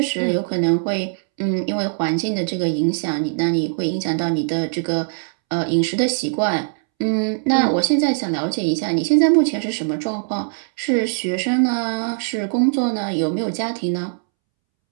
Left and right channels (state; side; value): silent; left; 65 dB below the other